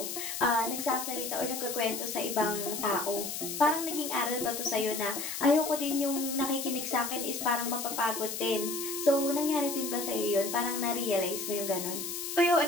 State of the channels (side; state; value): left; noise; hiss, 5 dB below the sound